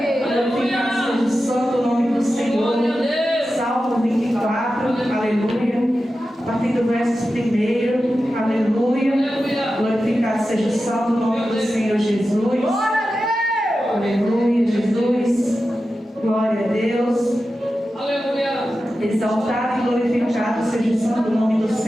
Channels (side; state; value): both; normal; correlation 0.92